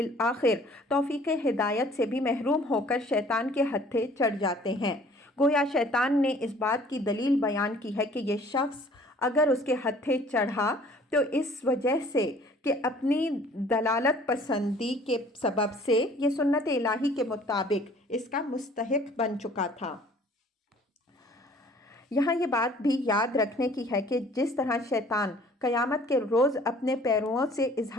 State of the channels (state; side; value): normal; both; correlation 0.53